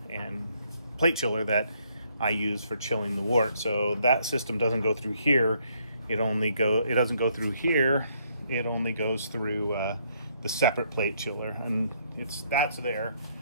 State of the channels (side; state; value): both; inverted; correlation -0.70